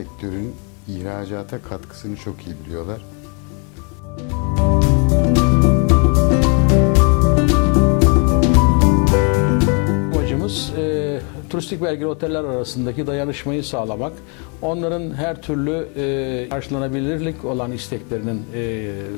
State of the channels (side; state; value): right; quieter; 36.5 dB